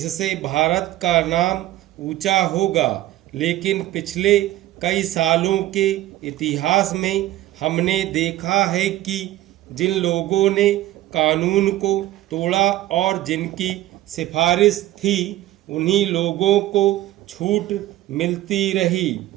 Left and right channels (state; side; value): quieter; left; 14.7 dB